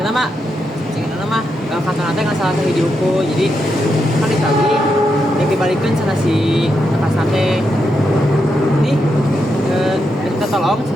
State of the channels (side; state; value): both; normal; correlation 0.84